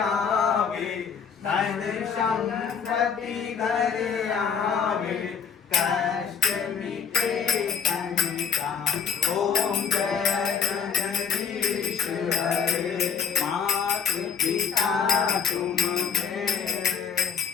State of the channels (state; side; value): quieter; right; 6.6 dB